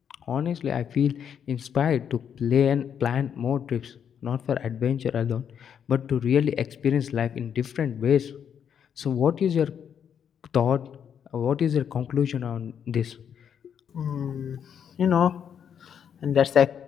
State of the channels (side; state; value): right; quieter; 8.2 dB